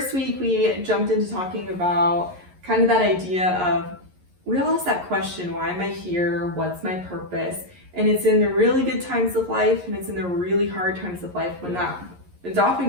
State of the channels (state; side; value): late; left; 11 ms